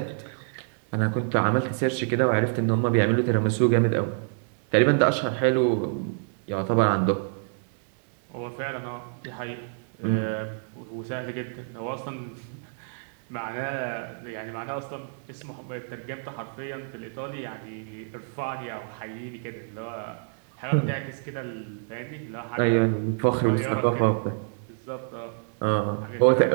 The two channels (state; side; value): silent; left; digital silence